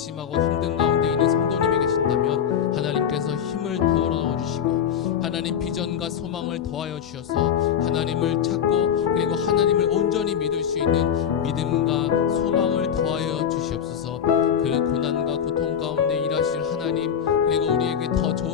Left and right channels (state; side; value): quieter; right; 8.5 dB